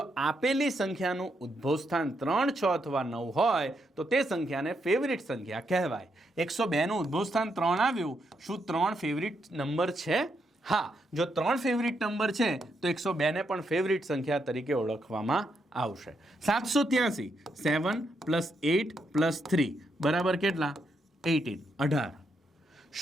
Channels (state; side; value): normal; both; correlation 0.80